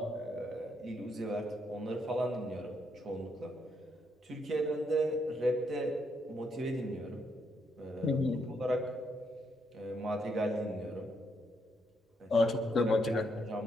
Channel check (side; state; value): both; normal; correlation 0.76